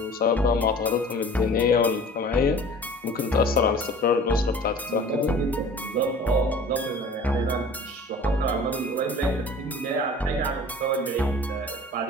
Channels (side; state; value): both; normal; correlation 0.44